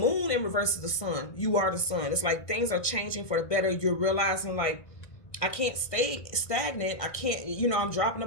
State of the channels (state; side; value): late; right; 1.5 ms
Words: in reverse is the sun. You are the sun. It's like things are changing for the better. You're realizing, like, I can't stay stagnant. I can't, you know, I'm dropping the